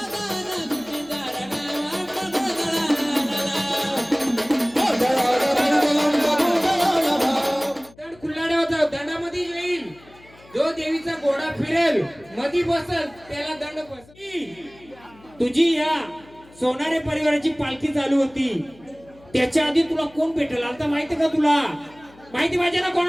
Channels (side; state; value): left; noise; hum, 25 dB below the sound